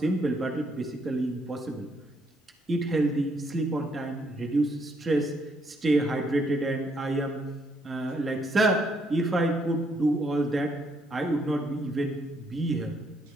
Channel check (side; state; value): both; normal; correlation 0.72